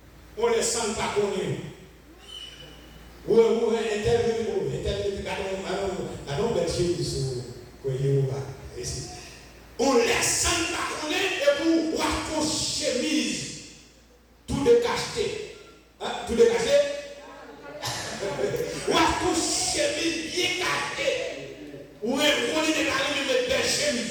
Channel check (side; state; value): both; identical; correlation 1.00